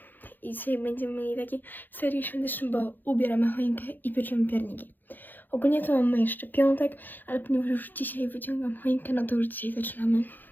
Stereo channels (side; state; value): right; late; 0.088 ms